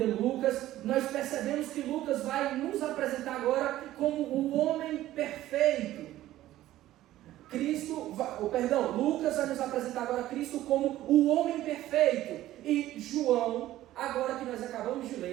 Lucas, nós percebemos que Lucas vai nos apresentar agora como o homem perfeito. Lucas vai nos apresentar agora Cristo como o homem perfeito. E João, agora que nós acabamos de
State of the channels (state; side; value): quieter; left; 14.5 dB